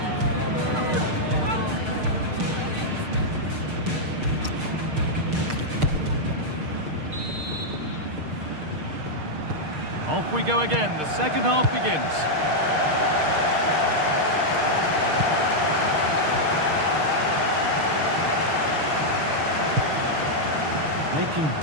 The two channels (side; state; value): left; late; 6.6 ms